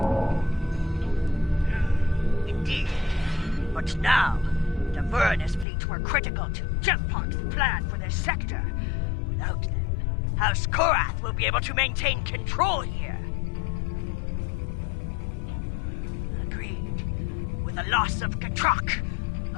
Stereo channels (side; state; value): right; drops out; at 5.7 s